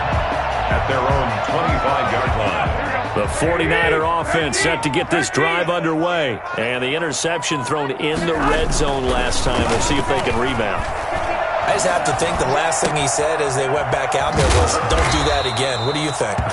at their own 25-yard line. The 49er offense set to get this drive underway. And the interception thrown in the red zone last time. We'll see if they can rebound. I just have to think the last thing he said as they went back out there was, don't do that again. What do you think?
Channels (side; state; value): both; identical; correlation 1.00